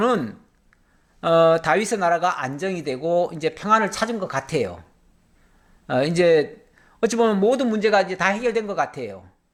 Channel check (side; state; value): both; identical; correlation 1.00